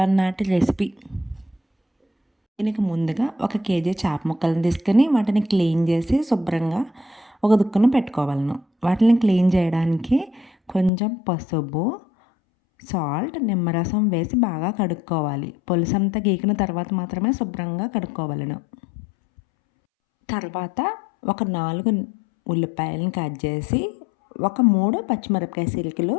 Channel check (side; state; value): right; drops out; at 10.9 s